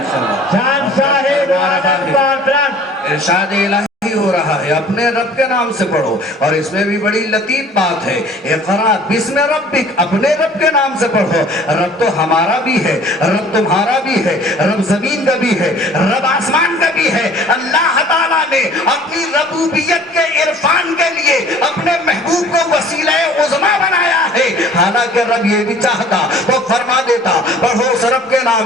جان صاحب عالم پاک ارشاد الہی ہو رہا ہے اپنے رب کے نام سے پڑھو. اور اس میں بھی بڑی لطیف بات ہے, اقرا بسم ربک, اپنے رب کے نام سے پڑھو. رب تو ہمارا بھی ہے, رب تمہارا بھی ہے, رب زمین کا بھی ہے, رب آسمان کا بھی ہے. اللہ تعالیٰ نے اپنی ربوبیت کے عرفان کے لیے اپنے محبوب کو وسیلہ عظمیٰ بنایا ہے. حالانکہ رب یہ بھی چاہتا تو فرما دیتا پڑھو اس رب کے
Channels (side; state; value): both; normal; correlation 0.50